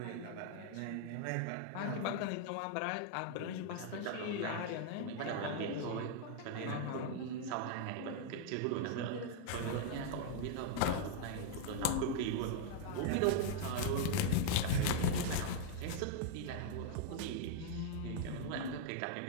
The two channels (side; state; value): both; different; correlation -0.01